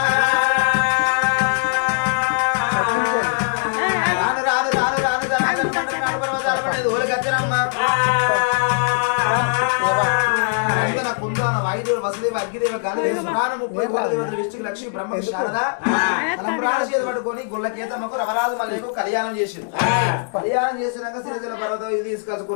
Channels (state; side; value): silent; right; digital silence